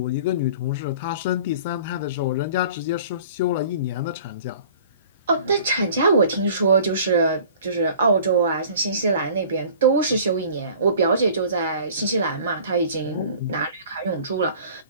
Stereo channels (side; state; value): both; inverted; correlation -0.47